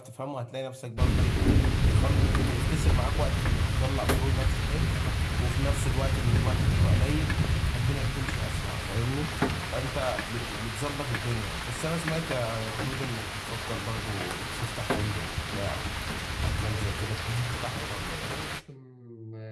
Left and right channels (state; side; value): identical; both; correlation 1.00